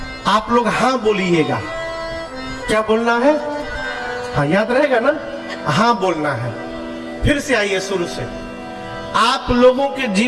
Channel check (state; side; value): identical; both; correlation 1.00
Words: आप लोग हाँ बोलिएगा। क्या बोलना है? हाँ, याद रहेगा ना? हाँ बोलना है। फिर से आइए शुरू से। आप लोगों के